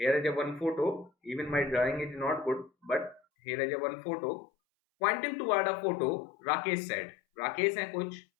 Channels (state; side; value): drops out; right; at 3.2 s